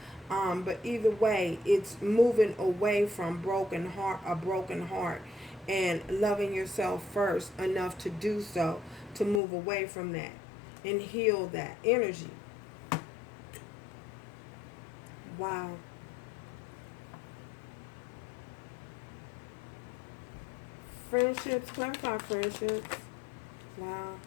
But either way, it's moving away from a broken heart, and loving yourself first enough to do so, to move away from that and heal that energy. Wow. Friendships, clarify friendships. Wow.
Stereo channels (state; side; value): drops out; right; at 9.4 s